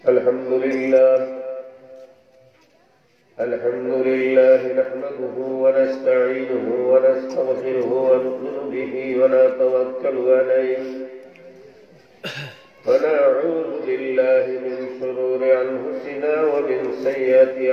Alhamdulillah nahmaduhu wa nasta'inuhu wa nastaghfiruhu wa nu'minu bihi wa natawakkalu alayhi wa na'udzu billahi min shururi anfusina wa min sayyiati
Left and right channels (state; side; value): identical; both; correlation 1.00